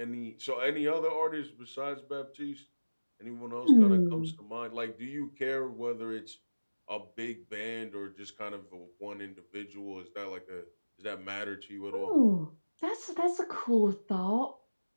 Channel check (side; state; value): both; inverted; correlation -1.00